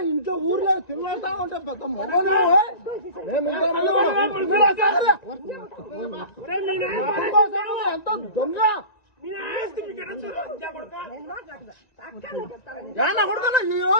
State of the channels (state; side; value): late; right; 1.9 ms